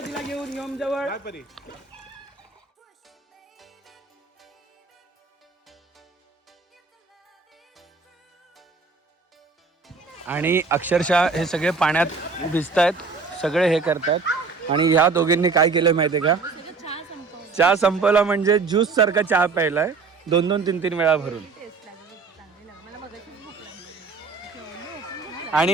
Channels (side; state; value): left; quieter; 4.5 dB